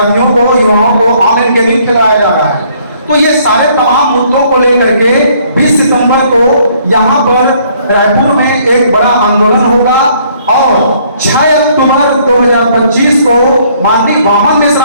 को, युवाओं को ऑनलाइन गेमिंग खिलाया जा रहा है। तो ये सारे तमाम मुद्दों को लेकर के 20 सितंबर को यहाँ पर रायपुर में एक बड़ा आंदोलन होगा, और 6 अक्टूबर 2025 को माननीय वामन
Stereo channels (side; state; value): both; inverted; correlation -0.63